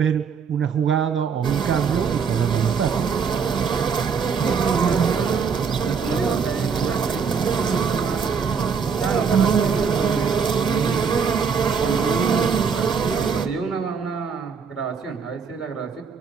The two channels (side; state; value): left; quieter; 6.1 dB